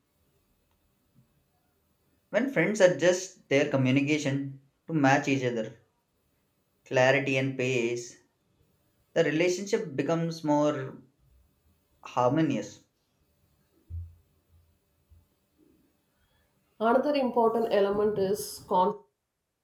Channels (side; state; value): both; identical; correlation 1.00